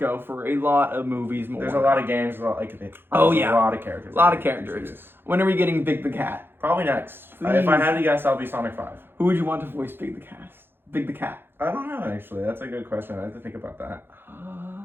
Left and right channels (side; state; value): left; late; 0.10 ms